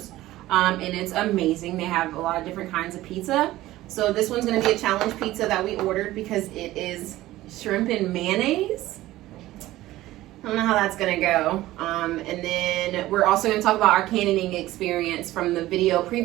and it's amazing. They have a lot of different kinds of pizza. So this one's gonna be a challenge pizza that we ordered because it is shrimp and mayonnaise. I don't know how that's gonna go. And then we're also gonna talk about our cannoning experience from the video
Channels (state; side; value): quieter; left; 16.2 dB